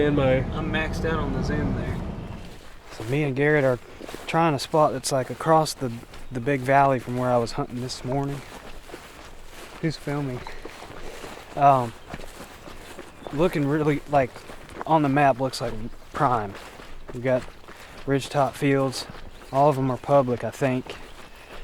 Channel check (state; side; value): identical; both; correlation 1.00